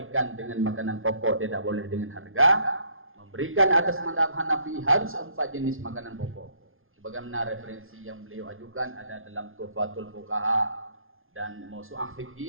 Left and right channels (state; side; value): late; left; 0.60 ms